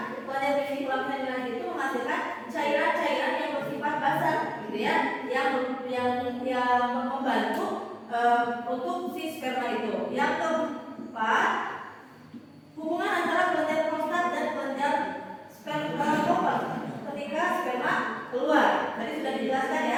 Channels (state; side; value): identical; both; correlation 1.00